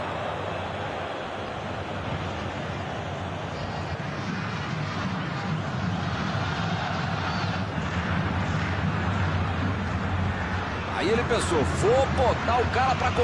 Aí ele pensou, vou botar o cara para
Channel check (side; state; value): both; identical; correlation 1.00